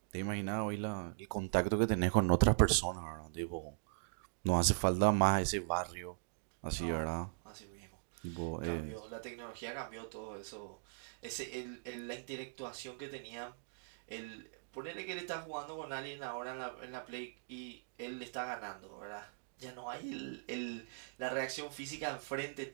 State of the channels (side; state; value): left; silent; digital silence